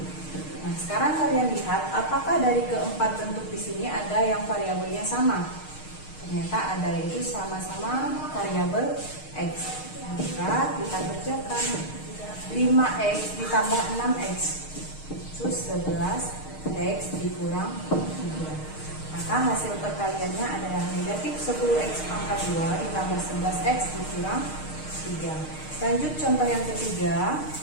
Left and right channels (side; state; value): right; late; 6.5 ms